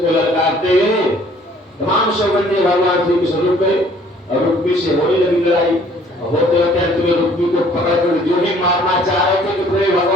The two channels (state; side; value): normal; both; correlation 0.57